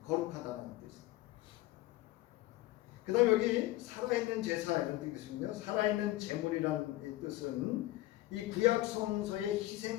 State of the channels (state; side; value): quieter; right; 17.2 dB